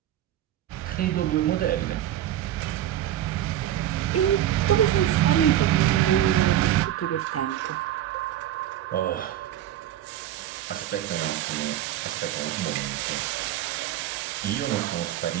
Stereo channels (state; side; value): quieter; left; 12.1 dB